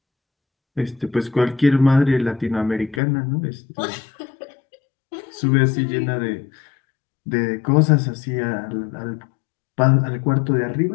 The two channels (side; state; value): right; drops out; at 3.0 s